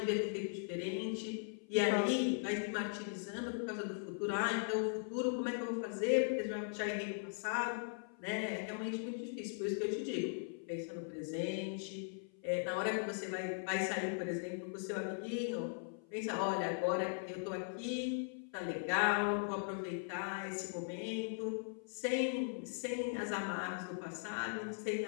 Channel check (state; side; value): silent; right; 51 dB below the other